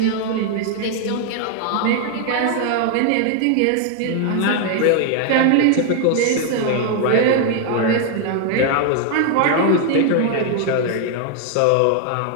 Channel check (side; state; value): both; different; correlation 0.00